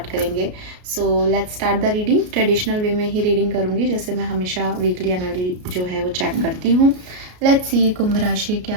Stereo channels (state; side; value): late; left; 33 ms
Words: करेंगे। So let's start the reading. Traditional way में ही रीडिंग करूँगी, जैसे मैं हमेशा वीकली एनर्जी जो है वो चेक करती हूँ। लेट्स सी कुंभ राशि